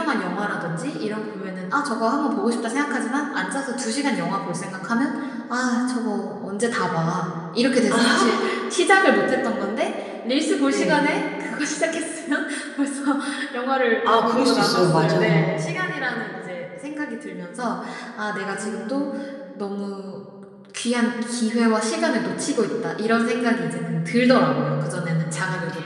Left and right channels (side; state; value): both; identical; correlation 1.00